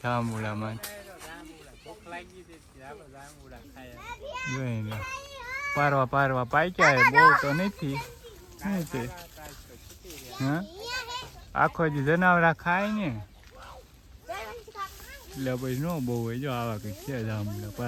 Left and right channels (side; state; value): both; identical; correlation 1.00